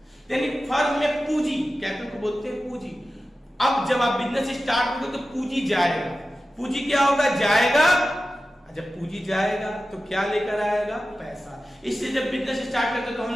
यानी फर्म में पूंजी, कैपिटल को बोलते हैं पूंजी। अब जब आप बिजनेस स्टार्ट करोगे तो पूंजी जाएगा, पूंजी क्या होगा, जाएगा। जब पूंजी जाएगा तो क्या लेकर आएगा, पैसा। इससे जब बिजनेस स्टार्ट करते तो हम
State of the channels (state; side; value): normal; both; correlation 0.94